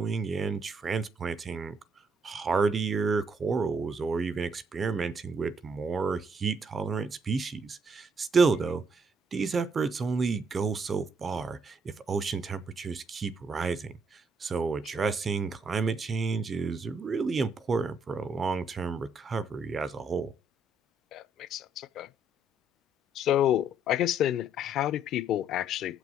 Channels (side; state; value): both; normal; correlation 0.70